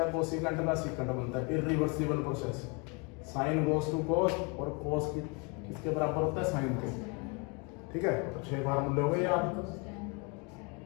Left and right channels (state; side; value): quieter; right; 30.5 dB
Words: कोसिकेंट का सीकेंट बनता है। Irreversible process. Sine goes to cos और कोस किसके बराबर होता है, साइन के, ठीक है। तो 6 फार्मूले हो गए आप।